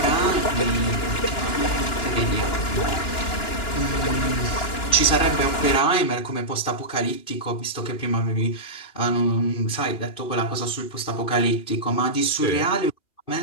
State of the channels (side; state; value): right; late; 2.9 ms